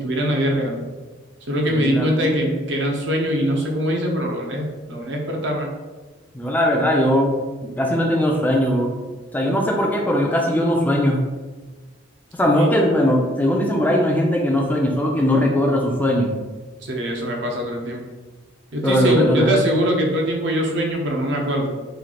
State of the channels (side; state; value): both; normal; correlation 0.62